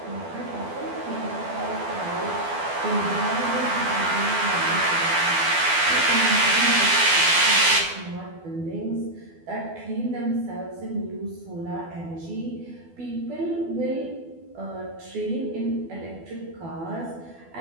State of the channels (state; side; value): late; left; 12 ms